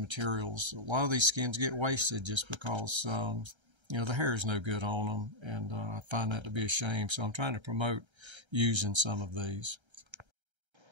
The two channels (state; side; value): late; left; 1.3 ms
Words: A lot of these skins get wasted just because you know, the hair is no good on them, and I find that to be a shame. So I'm trying to promote using some of these.